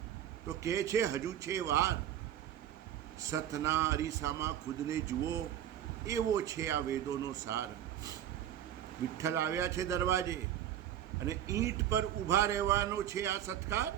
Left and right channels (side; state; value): left; quieter; 11.0 dB